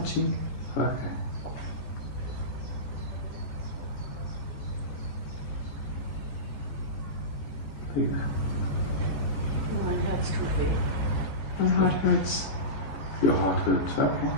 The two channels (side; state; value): right; late; 14 ms